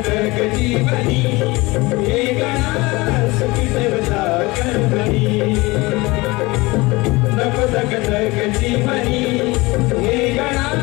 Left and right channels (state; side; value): quieter; right; 22.7 dB